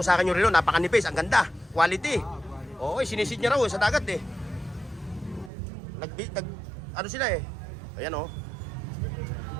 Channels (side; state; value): left; drops out; at 5.5 s